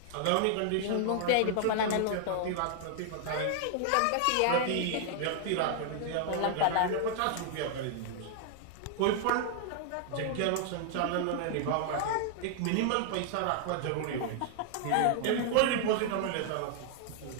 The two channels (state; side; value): different; both; correlation 0.00